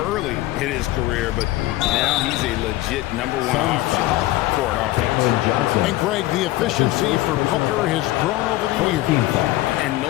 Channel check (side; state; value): right; quieter; 17.0 dB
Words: early in his career, but now he's a legit #1 option for an offense. And, Greg, the efficiency for Booker has grown over the years. And